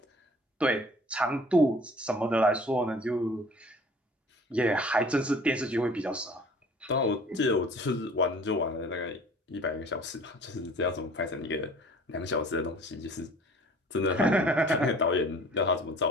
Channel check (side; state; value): both; normal; correlation 0.49